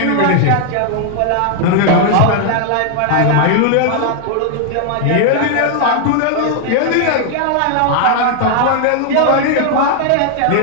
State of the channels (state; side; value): different; both; correlation 0.00